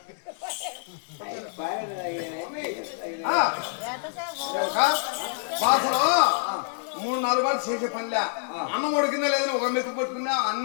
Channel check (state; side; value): silent; right; 60 dB below the other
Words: బాసలో 3-4 మాటలు చేసే పనిలే. అన్నం ఉడికిందా లేదని ఒక మెతుకు పట్టుకున్నా